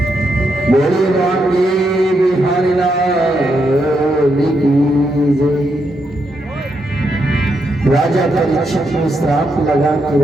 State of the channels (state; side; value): normal; both; correlation 0.81